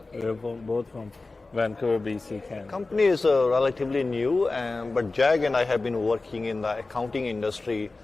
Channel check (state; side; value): quieter; right; 3.5 dB